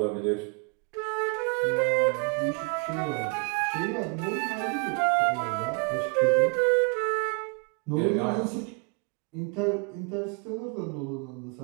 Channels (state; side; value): quieter; left; 34.1 dB